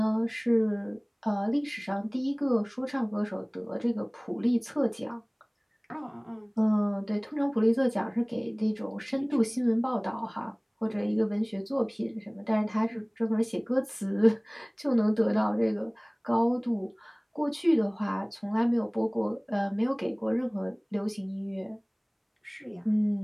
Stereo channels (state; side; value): identical; both; correlation 1.00